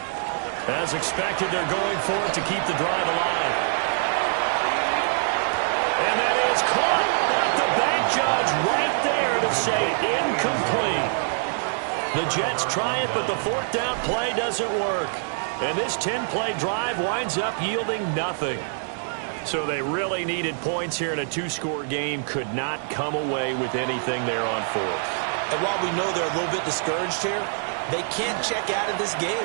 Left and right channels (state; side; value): silent; left; 62 dB below the other